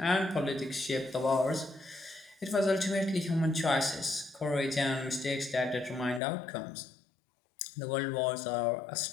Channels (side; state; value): right; drops out; at 6.2 s